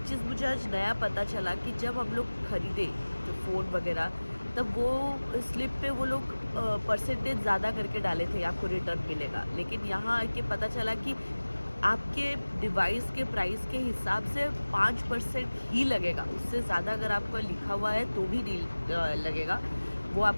चीज़ मुझे आज नया पता चला कि जब हम लोग ख़रीदे जो फ़ोन वगैरह, तब वो स्लिप पे वो लोग परसेंटेज ज़्यादा करके डाले थे, आपको रिटर्न मिलेगा। लेकिन यहाँ आके पता चला कि आपके डिवाइस के प्राइस के हिसाब से 5% ही लगेगा, उससे ज़्यादा अगर आपका लिखा हुआ है तो भी नहीं लगेगा। वो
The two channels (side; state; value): both; inverted; correlation -1.00